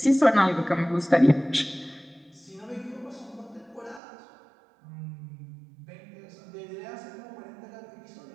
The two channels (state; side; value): drops out; left; at 4.0 s